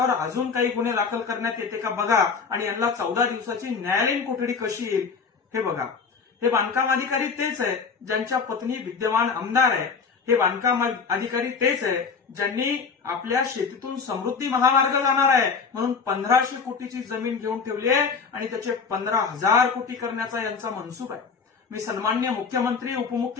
अजून काही गुन्हे दाखल करण्यात येते का बघा आणि यांना 14 दिवसाची न्यायालयीन कोठडी कशी येईल हे बघा। हे बांधकाम अधिकारी तेच आहे ज्यांच्या पत्नी विद्यमान आमदार आहे। हे बांधकाम अधिकारी तेच आहे ज्यांनी आपल्या शेतीतून समृद्धी महामार्ग जाणार आहे म्हणून 1500 कोटीची जमीन घेऊन ठेवली आहे आणि त्याचे 15,000 कोटी करण्याचा यांचा मनसूब आहे। मी सन्माननीय मुख्यमंत्री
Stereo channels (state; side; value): quieter; right; 5.4 dB